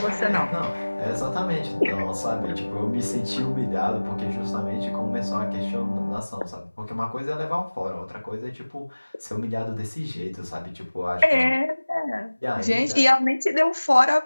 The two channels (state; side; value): inverted; both; correlation -1.00